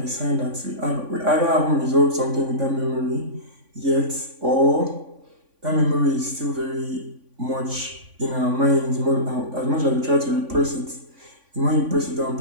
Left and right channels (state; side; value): late; left; 3.5 ms